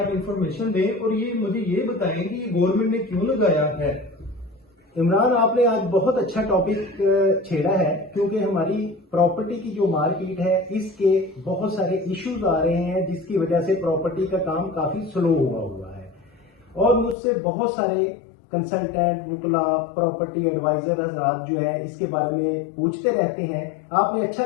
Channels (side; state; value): right; drops out; at 17.2 s